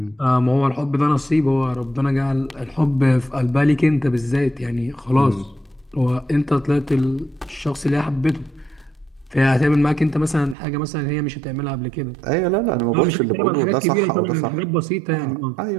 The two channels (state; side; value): drops out; left; at 10.6 s